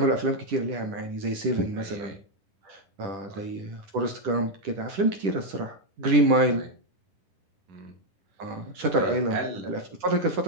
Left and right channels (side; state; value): left; late; 10 ms